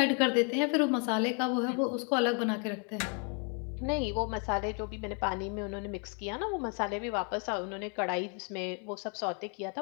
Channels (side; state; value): right; quieter; 38.5 dB